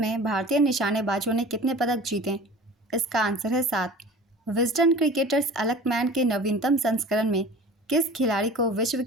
भारतीय निशानेबाजों ने कितने पदक जीते? इसका आंसर है 7। विजडन क्रिकेटर्स अलकमैन के नवीनतम संस्करण में किस खिलाड़ी को विश्व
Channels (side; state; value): both; normal; correlation 0.41